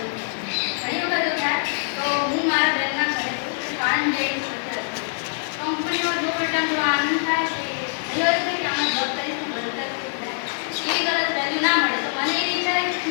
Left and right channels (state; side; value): silent; right; 63 dB below the other